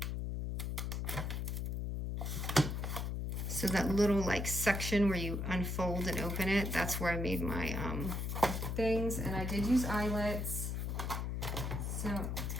So that little like section where you unfold and open it, that's where I made my things. And I did use eyelets, so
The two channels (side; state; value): left; noise; hum, 2 dB below the sound